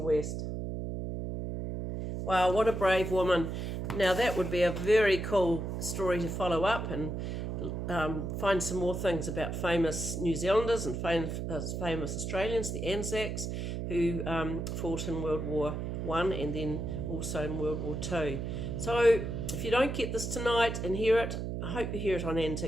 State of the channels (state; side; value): noise; right; hum, 4 dB below the sound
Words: Wow, what a brave woman. Now that would be a very cool story to follow up and find some more things about famous New Zealanders and famous Australians, the Anzacs, who fought in World War I and then also in World War II. So if you don't get this tonight and hear it, I hope you hear it on